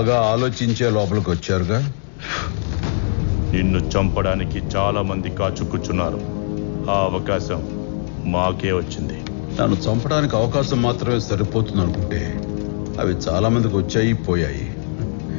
ఆలోచించే లోపలికి వచ్చారుగా. నిన్ను చంపడానికి చాలా మంది కాచుకుచున్నారు. ఆ అవకాశం మాకే వచ్చింది. నన్ను చంపడానికి అవకాశం మాత్రమే సరిపోతుంది అనుకుంటే అవి చాలా మందికి వచ్చాయి, పోయాయి.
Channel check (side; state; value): right; silent; digital silence